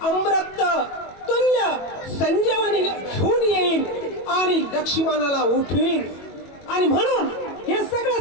अमृत तुल्य संजीवनी घेऊन येईल आणि लक्ष्मणाला उठवीन. आणि म्हणून हे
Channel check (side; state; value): right; late; 22 ms